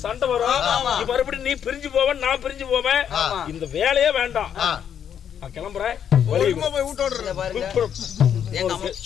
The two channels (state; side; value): quieter; right; 8.7 dB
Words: சண்டை வரும். மறுபடியும் நீ பிரிஞ்சு போவேன், நான் பிரிஞ்சு போவேன். இந்த வேலையே வேண்டாம். கிளம்புறேன்.